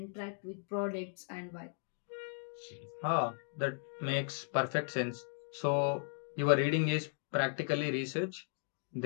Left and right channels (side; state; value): right; silent; 53 dB below the other